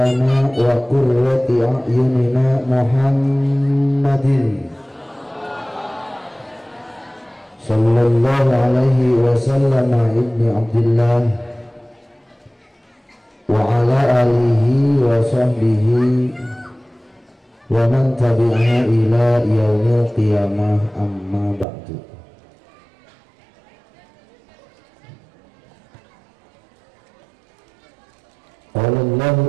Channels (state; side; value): drops out; left; at 21.7 s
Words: wa qurrati a'yunina Muhammadin sallallahu alaihi wasallam ibni Abdillah wa ala alihi wa sahbihi wa man tabi'aha ila yaumil qiyamah, amma ba'du. Qala Allah